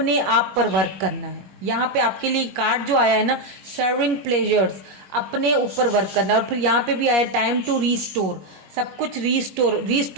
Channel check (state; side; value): late; left; 21 ms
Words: आप पर वर्क करना है। यहाँ पे आपके लिए कार्ड जो आया है ना, सर्विंग प्लेजर्स, अपने ऊपर वर्क करना है। और फिर यहाँ पे भी आया टाइम टू रीस्टोर, सब कुछ